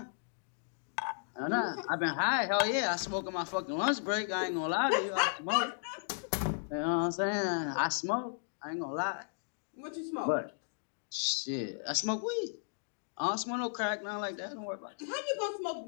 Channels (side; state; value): right; silent; digital silence